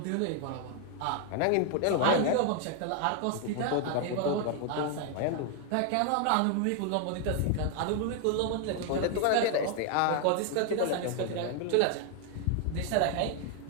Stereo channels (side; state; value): both; different; correlation 0.00